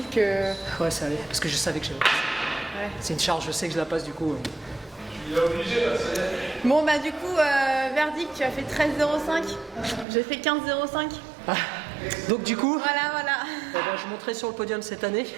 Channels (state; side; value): drops out; left; at 10.1 s